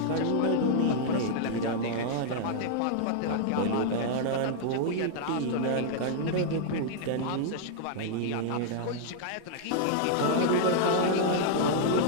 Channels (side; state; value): both; different; correlation -0.01